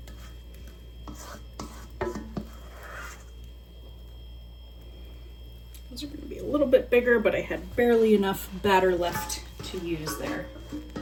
These are going to be a little bit bigger, but I had barely enough batter left to use there.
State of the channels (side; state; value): both; identical; correlation 1.00